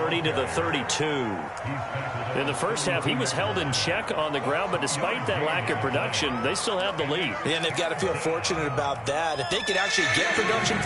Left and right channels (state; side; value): identical; both; correlation 1.00